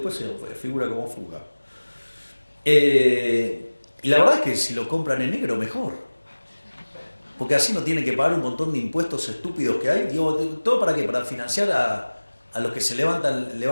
se figura como fuga. Y la verdad es que si lo compran en negro, mejor. Porque así no tienen que pagar un montón de impuestos estúpidos que hay. ¿Todo para qué? Para financiar a los que se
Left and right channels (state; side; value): inverted; both; correlation -1.00